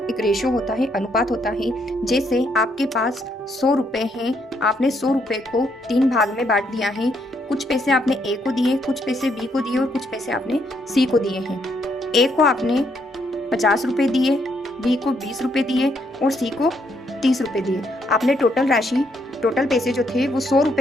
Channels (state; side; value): normal; both; correlation 0.74